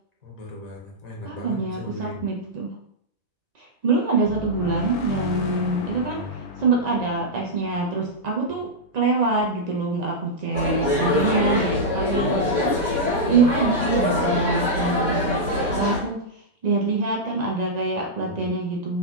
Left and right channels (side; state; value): left; late; 1.9 ms